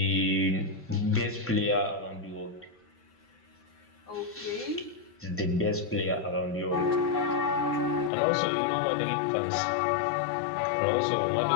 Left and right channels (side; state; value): right; drops out; at 8.1 s